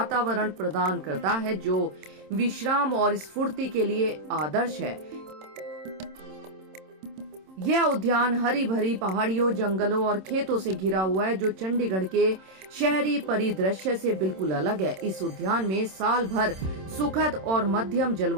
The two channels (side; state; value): left; late; 27 ms